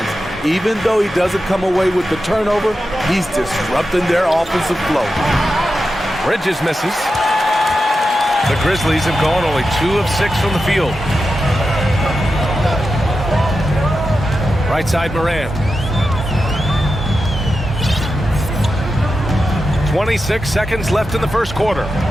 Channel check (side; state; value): both; normal; correlation 0.90